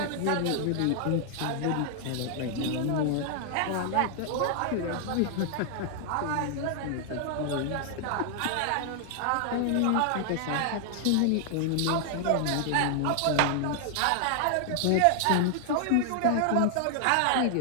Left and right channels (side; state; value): both; different; correlation 0.00